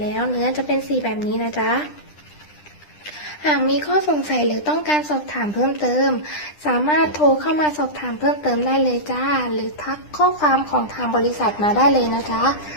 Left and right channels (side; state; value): right; late; 9.9 ms